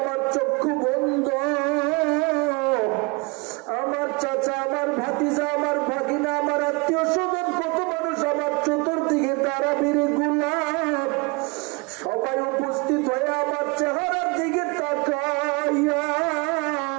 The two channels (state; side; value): quieter; left; 28.5 dB